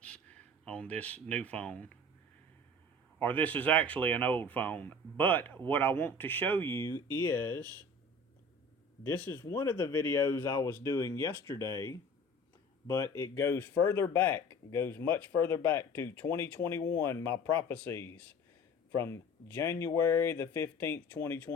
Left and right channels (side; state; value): both; normal; correlation 0.42